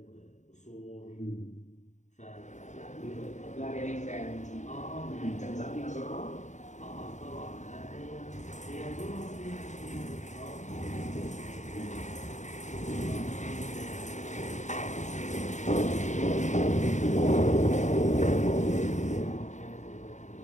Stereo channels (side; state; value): right; late; 0.34 ms